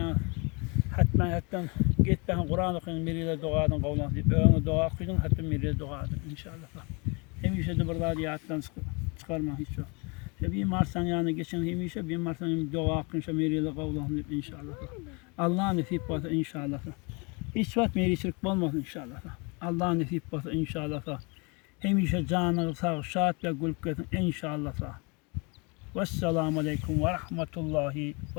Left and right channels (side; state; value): right; quieter; 30.8 dB